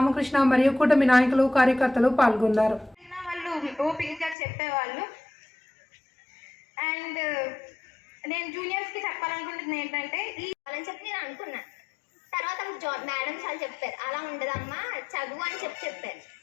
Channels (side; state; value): right; drops out; at 4.4 s